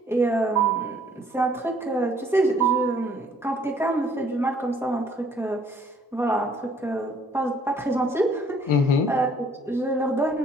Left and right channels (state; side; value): normal; both; correlation 0.61